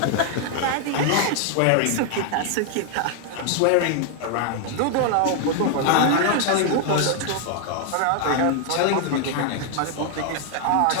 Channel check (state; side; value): different; both; correlation 0.00